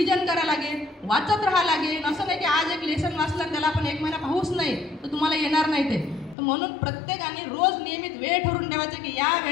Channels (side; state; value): right; drops out; at 6.4 s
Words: करायला लागेल, वाचत राहावं लागेल. असं नाही की आज एक लेसन वाचलं त्याला आपण 1 महिना पाहूच नाही तर तुम्हाला येणार नाही ते. तर म्हणून प्रत्येकाने रोज नियमित वेळ ठरवून ठेवायचं की या